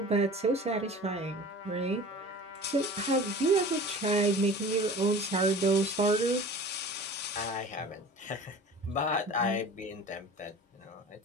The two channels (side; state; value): both; normal; correlation 0.40